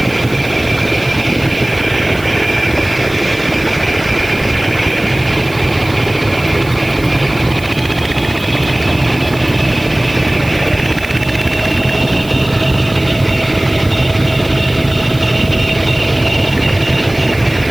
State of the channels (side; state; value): right; noise; hiss, 19 dB below the sound